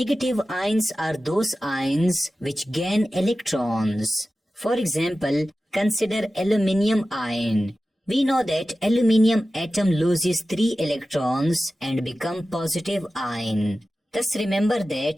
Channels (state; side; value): normal; both; correlation 0.95